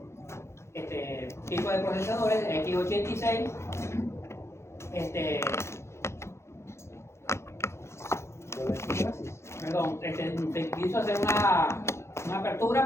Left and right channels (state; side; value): late; right; 0.13 ms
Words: tipos de procesadores x86. Perdón, se quiso hacer una apertura,